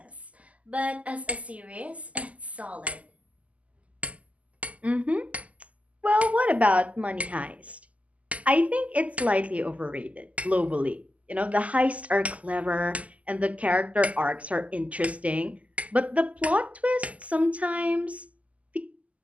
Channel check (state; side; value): late; left; 0.070 ms